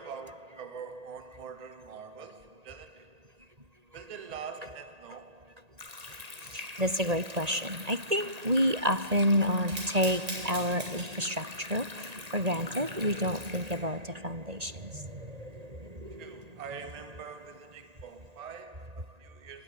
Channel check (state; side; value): late; left; 1.8 ms